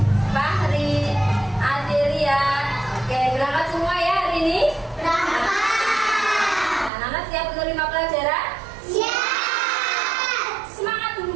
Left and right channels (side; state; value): left; drops out; at 6.9 s